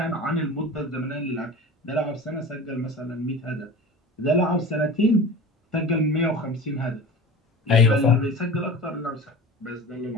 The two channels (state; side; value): normal; both; correlation 0.35